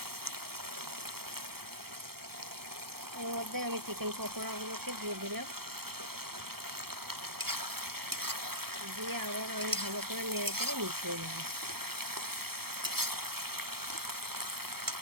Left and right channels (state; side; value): late; left; 0.95 ms